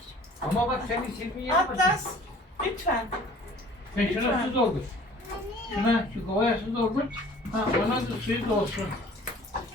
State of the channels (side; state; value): both; normal; correlation 0.50